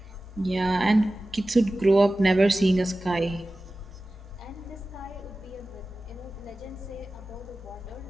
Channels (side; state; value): both; normal; correlation 0.96